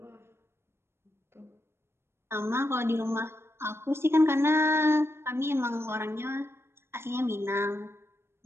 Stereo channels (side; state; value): left; late; 0.12 ms